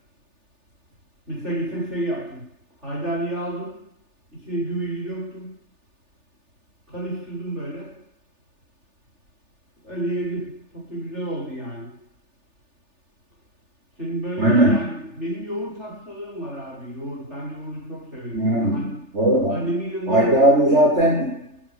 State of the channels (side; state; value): left; late; 3.4 ms